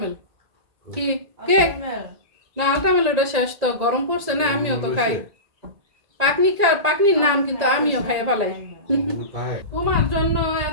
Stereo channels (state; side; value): late; left; 1.9 ms